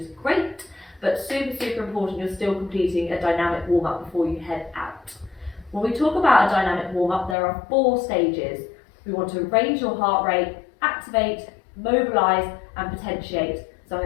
great, but super important you're still completing a dynamic warm-up before you head out. When we talk about a dynamic warm-up, there are 4 stages. We want to raise your heart rate, activate, mobilize and potentiate. So I'm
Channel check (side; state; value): right; drops out; at 7.4 s